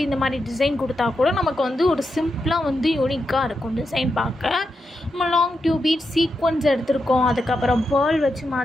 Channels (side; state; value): both; normal; correlation 0.86